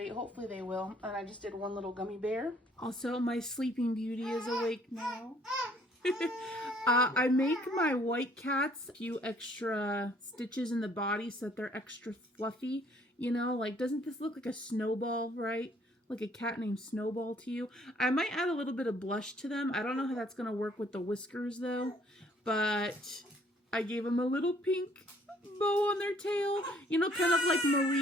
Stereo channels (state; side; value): normal; both; correlation 0.62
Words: Hopefully they will. And I just did one little gummy bear. Also, my Sleeping Beauty is awake now. I make my white cats a few extra stitches in the body so that they're extra fluffy. You know, like, doesn't this look like a snowball, right? Like a cat named Snowball to you. I might add a little bit of blush to them. I don't know how that's going to work with the whiskers, though. But I gave them a little pink bow on their tail. You know, kind of like